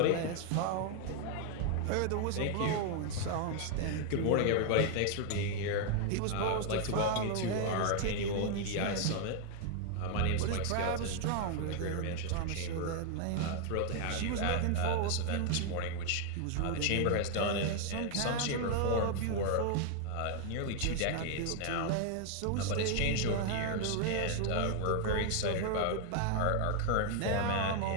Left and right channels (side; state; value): both; different; correlation 0.00